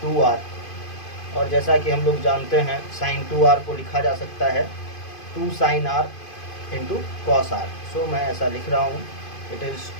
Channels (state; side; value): late; right; 2.5 ms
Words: 2r। और जैसा कि हम लोग जानते हैं साइन 2r को लिखा जा सकता है 2 sine r into cos r, so मैं ऐसा लिख रहा हूँ, it is